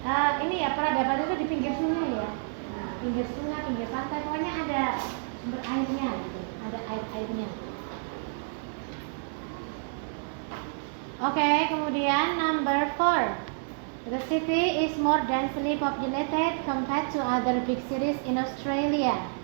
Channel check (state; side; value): silent; left; digital silence